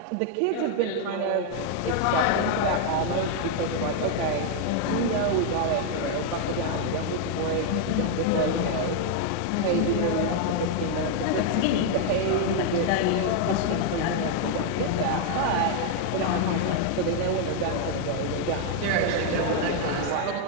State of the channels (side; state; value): both; different; correlation 0.00